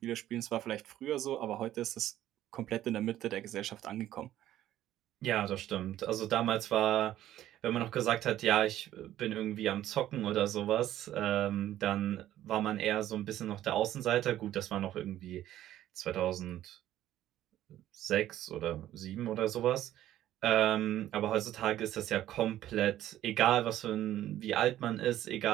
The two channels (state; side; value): quieter; left; 13.0 dB